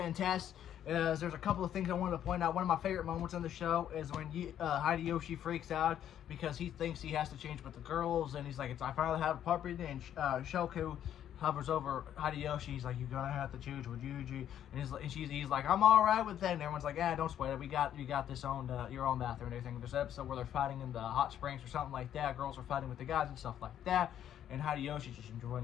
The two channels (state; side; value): quieter; right; 10.4 dB